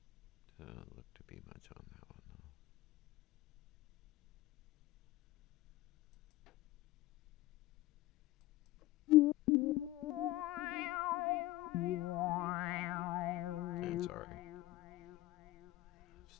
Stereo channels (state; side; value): quieter; right; 17.4 dB